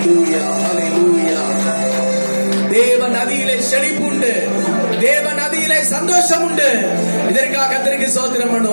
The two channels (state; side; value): inverted; both; correlation -1.00